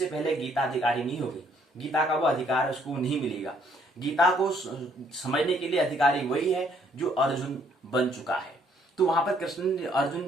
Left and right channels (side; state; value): both; normal; correlation 0.66